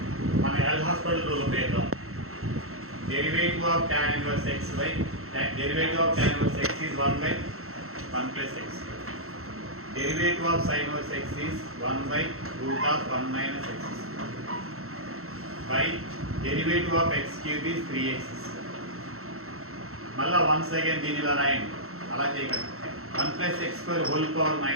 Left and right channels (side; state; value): left; late; 0.63 ms